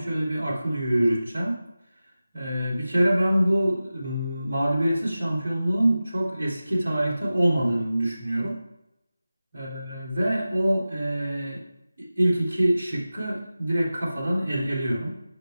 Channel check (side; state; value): both; inverted; correlation -0.95